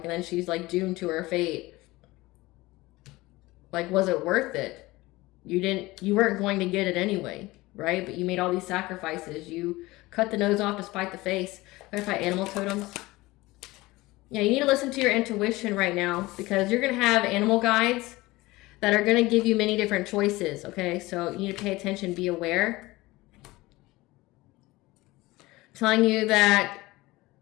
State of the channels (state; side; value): quieter; right; 20.1 dB